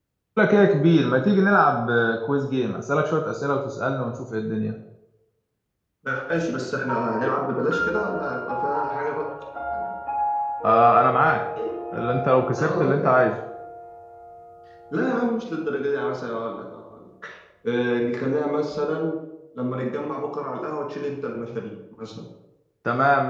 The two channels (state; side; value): identical; both; correlation 1.00